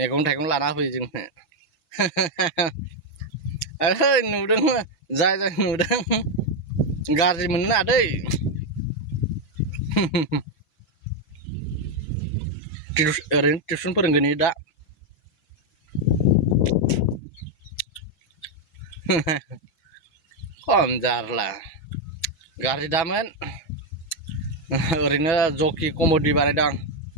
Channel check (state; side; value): late; right; 6.1 ms